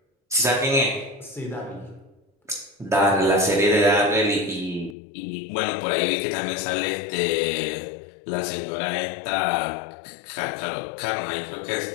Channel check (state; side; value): drops out; right; at 5.0 s